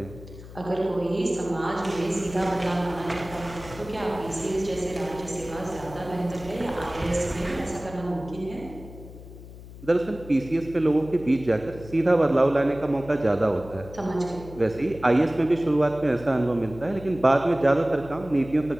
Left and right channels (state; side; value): noise; left; hum, 16 dB below the sound